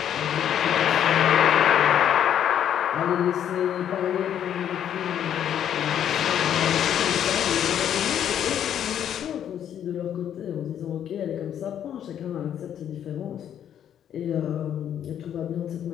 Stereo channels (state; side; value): quieter; right; 9.8 dB